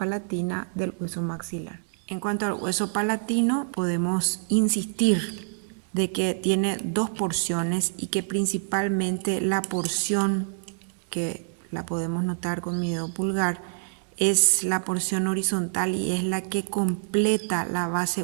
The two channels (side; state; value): left; silent; digital silence